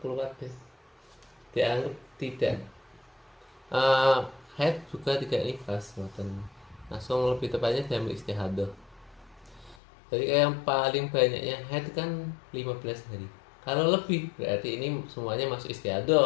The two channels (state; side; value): drops out; right; at 9.8 s